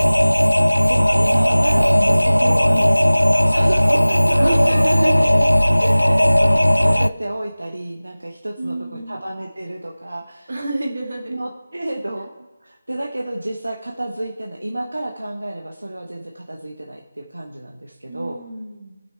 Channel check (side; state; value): both; inverted; correlation -0.99